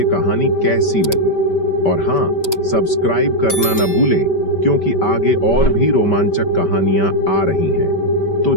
कहानी कैसी लगी। और हाँ, सब्सक्राइब करना न भूलें, क्योंकि आगे और भी रोमांचक कहानियां आ रही हैं। तो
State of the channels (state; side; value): late; right; 5.1 ms